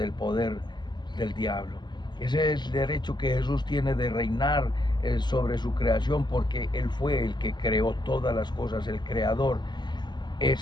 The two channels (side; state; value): right; late; 0.21 ms